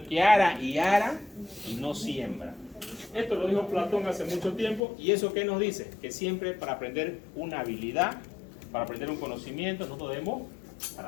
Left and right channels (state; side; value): drops out; right; at 4.8 s